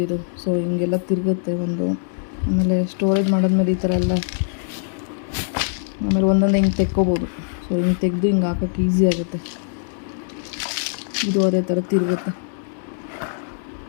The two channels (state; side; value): silent; right; 64 dB below the other